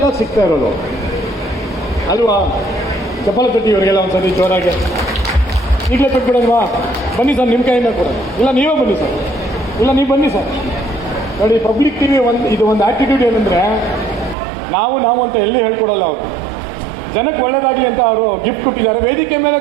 ಸಿಗ್ತಾ ಇರೋದು ಅಲ್ವಾ? ಚಪ್ಪಲ ತಟ್ಟಿ ಇವರಿಗೆಲ್ಲ ಒಂದ್ಸತಿ ಜೋರಾಗಿ. ಈಗಲೇ ಕೊಟ್ಬಿಡಲ್ವಾ? ಬನ್ನಿ ಸರ್, ನಿಮ್ಮ ಕೈಯಿಂದ ಕೂಡ. ಇಲ್ಲ ನೀವೇ ಬನ್ನಿ ಸರ್. ಇಲ್ಲ ನೀವು ಬನ್ನಿ ಸರ್. ನೋಡಿ, ಪಬ್ಲಿಕ್ ಟಿವಿ ಇದು ಒಂದು ಆ್ಯಟಿಟ್ಯೂಡ್ ಏನಂದರೆ, ನಾವು ಅಂತ ಎಲ್ಲಿ ಹೇಳ್ಕೊಡಲ್ಲ ಅವರು. ಜನಕ್ಕೆ ಒಳ್ಳೇದಾಗಲಿ ಅಂತ ಅವರು ಗಿಫ್ಟ್ ಕೊಟ್ಟಿದ್ದಾರೆ. ವೇದಿಕೆ ಮೇಲೆ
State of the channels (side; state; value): left; drops out; at 14.4 s